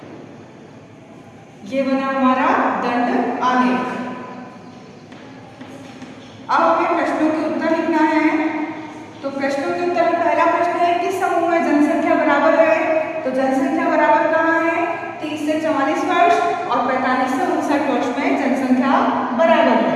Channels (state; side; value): identical; both; correlation 1.00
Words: ये बना हमारा दंड आलेख। अब हमें प्रश्नों के उत्तर लिखना है। तो प्रश्नों के उत्तर में पहला प्रश्न है, किस समूह में जनसंख्या बराबर है? तो जनसंख्या बराबर कहाँ है? 30 से 44 वर्ष और 45 से 59 वर्ष में जनसंख्या बराबर है।